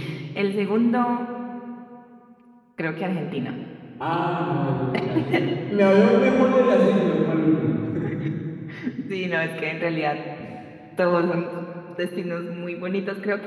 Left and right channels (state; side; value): identical; both; correlation 1.00